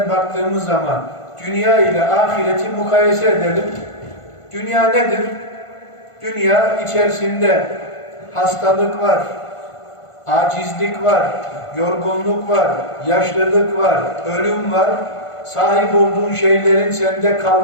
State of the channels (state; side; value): late; right; 1.5 ms